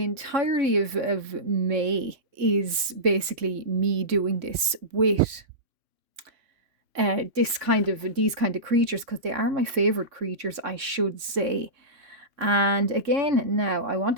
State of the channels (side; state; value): left; late; 3.5 ms